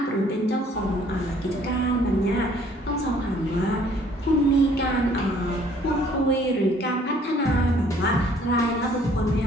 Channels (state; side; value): normal; both; correlation 0.59